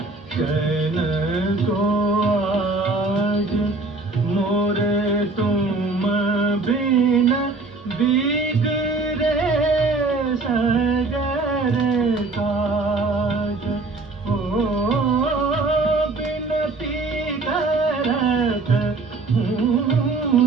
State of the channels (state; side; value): quieter; left; 3.5 dB